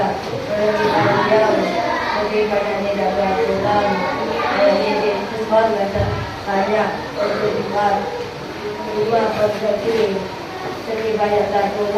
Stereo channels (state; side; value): identical; both; correlation 1.00